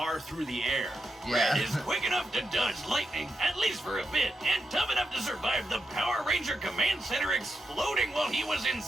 through the air. Yeah. Red is quick enough to dodge lightning, at least for a bit, and tough enough to survive the Power Ranger Command Center exploding while he was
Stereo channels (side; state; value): both; normal; correlation 0.86